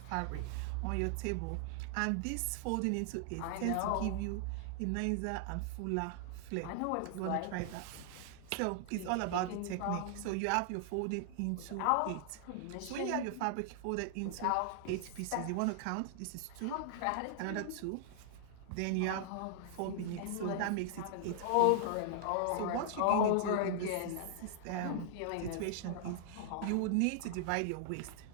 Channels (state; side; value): different; both; correlation -0.01